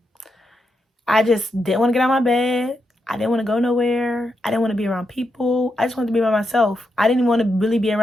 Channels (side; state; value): both; normal; correlation 0.84